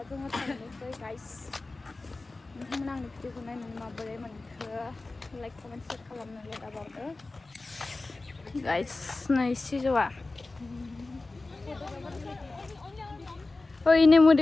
जोङो थांनोसै गाइस नोंथांमोना आंनि भिडिअखौ नायनानै माबोरै मोनखो लाइक कमेन्ट शेयार खालामनो दाबावदो गाइस नै सिजौआ ओइ नै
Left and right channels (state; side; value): quieter; right; 3.3 dB